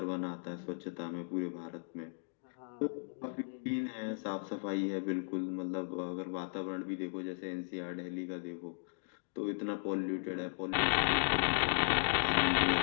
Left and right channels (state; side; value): silent; right; digital silence